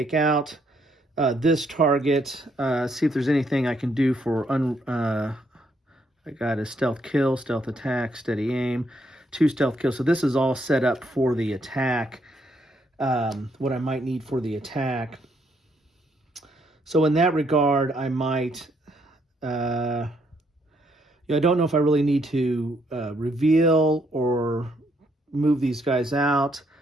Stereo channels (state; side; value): normal; both; correlation 0.73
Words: out this target. See if there's anything I can do for I got a stealth kill, stealth attack, steady aim, 2 stealth kills. So this is all set up for the attack, what I might need for the attack. So in that regard, I might, I don't know if I really need to reveal or move these guys out.